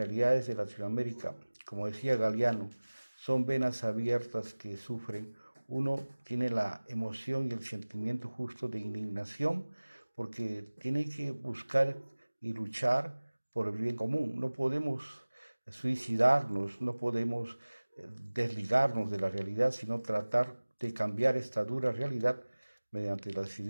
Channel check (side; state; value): both; inverted; correlation -1.00